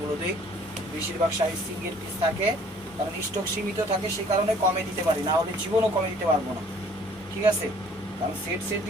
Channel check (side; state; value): both; normal; correlation 0.56